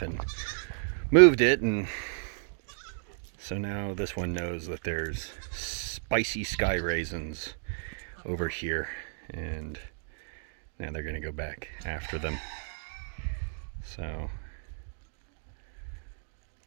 and moved it, and so now this one knows that there's spicy sky raisins over here, and now they're gonna go back after them. So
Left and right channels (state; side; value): silent; left; digital silence